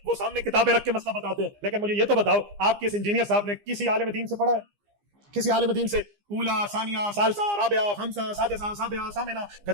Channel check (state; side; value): late; left; 15 ms